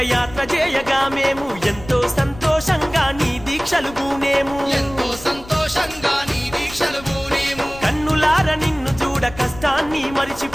యాత్ర చేయగా మేము ఎంతో సంతోషంగా నీ దీక్షలు పూనేము ఎంతో సంతోషంగా నీ దీక్షలు పూనేము కన్నులార నిన్ను చూడ కష్టాన్ని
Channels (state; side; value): noise; left; rumble, 17 dB below the sound